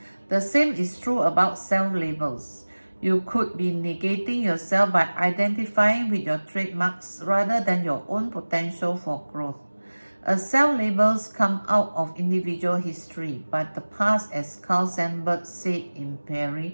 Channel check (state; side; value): inverted; both; correlation -1.00